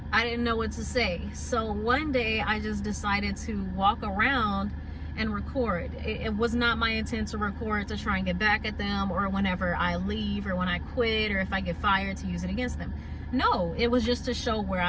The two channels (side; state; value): both; identical; correlation 1.00